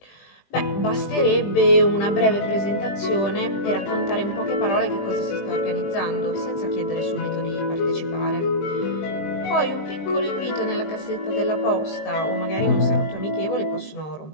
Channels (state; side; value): late; right; 20 ms